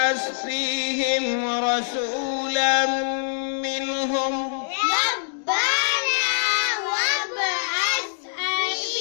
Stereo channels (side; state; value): right; silent; digital silence